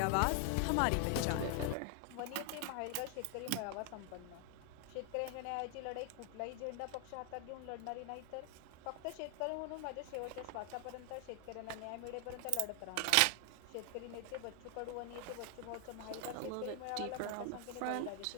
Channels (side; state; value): both; different; correlation 0.00